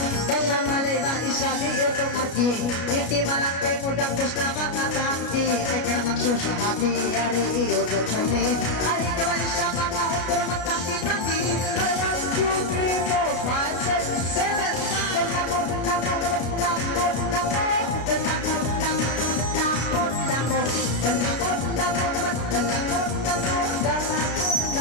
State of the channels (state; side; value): late; right; 33 ms